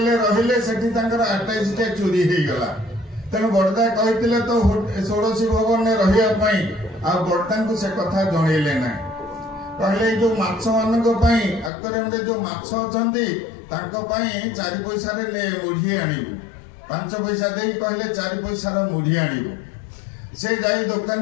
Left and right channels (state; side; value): drops out; right; at 11.7 s